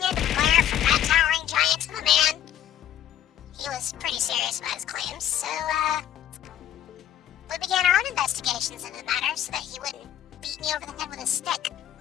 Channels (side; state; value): right; quieter; 10.7 dB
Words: end of a glare from that towering giant of a man? He was pretty serious about his claims, so, we began our own investigations into the matter so that he wouldn't beat me over the head with a stick.